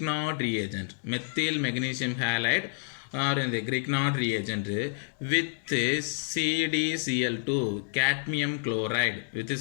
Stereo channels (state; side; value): silent; right; digital silence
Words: reagent. Methyl magnesium halide or in the Grignard reagent with CdCl2 cadmium chloride,